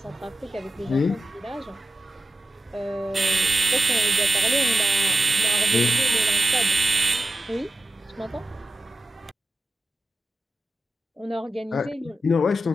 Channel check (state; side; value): normal; both; correlation 0.92